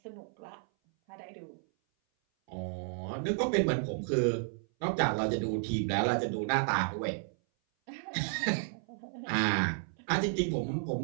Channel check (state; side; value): silent; left; 56 dB below the other